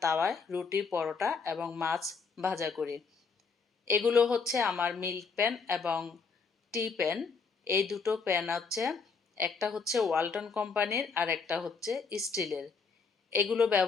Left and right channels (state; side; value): quieter; right; 5.0 dB